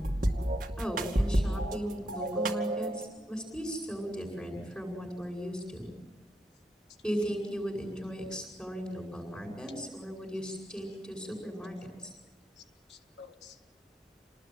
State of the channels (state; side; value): normal; both; correlation 0.81